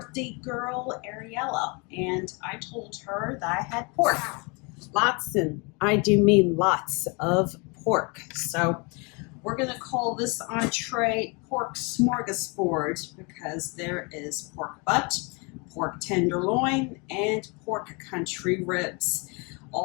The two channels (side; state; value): right; quieter; 30.8 dB